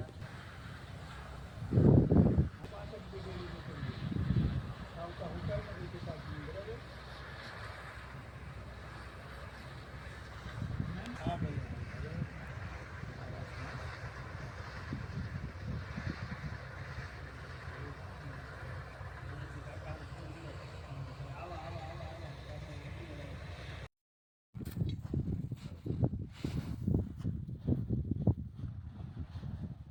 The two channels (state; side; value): identical; both; correlation 1.00